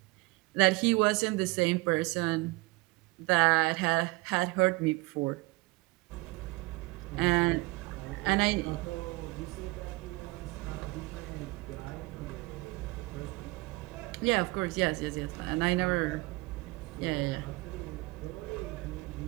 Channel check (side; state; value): left; quieter; 24.0 dB